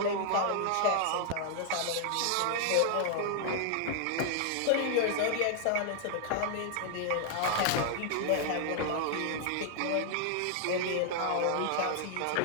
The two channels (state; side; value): different; both; correlation -0.01